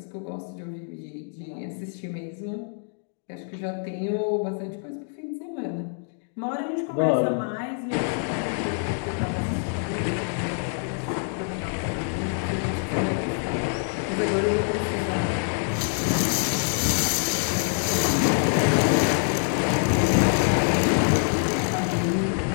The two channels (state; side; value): silent; right; 58 dB below the other